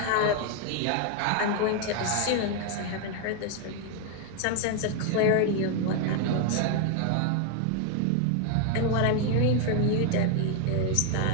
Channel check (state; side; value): different; both; correlation 0.01